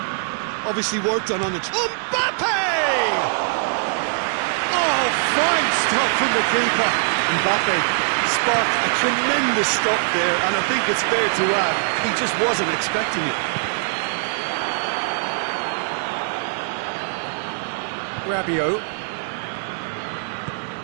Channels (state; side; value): silent; left; digital silence